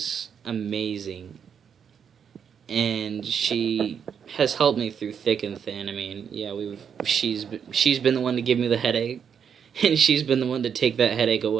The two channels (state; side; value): quieter; left; 7.5 dB